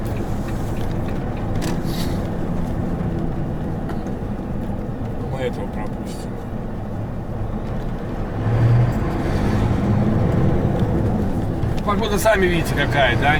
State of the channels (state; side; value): identical; both; correlation 1.00